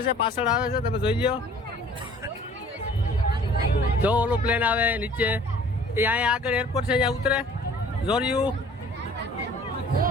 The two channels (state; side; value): normal; both; correlation 0.51